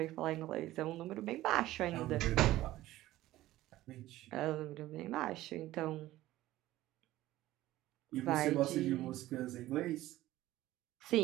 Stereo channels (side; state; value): left; quieter; 15.8 dB